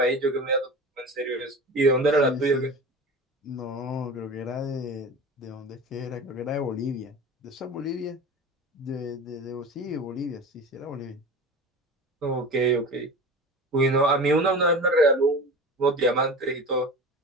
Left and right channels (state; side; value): normal; both; correlation 0.33